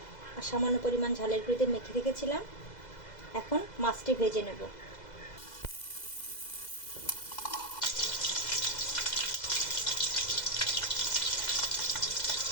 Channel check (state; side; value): late; right; 2.0 ms